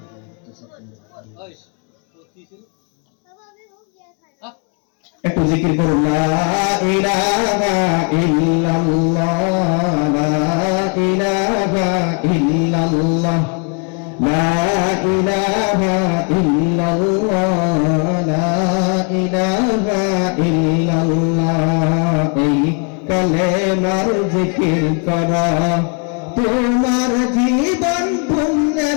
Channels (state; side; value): quieter; right; 37.4 dB